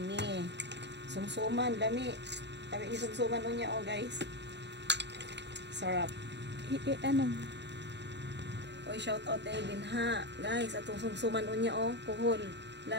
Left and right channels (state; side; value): late; left; 0.51 ms